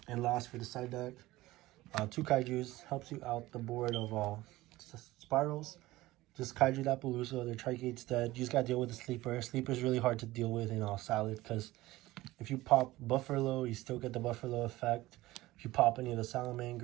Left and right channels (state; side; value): quieter; left; 18.0 dB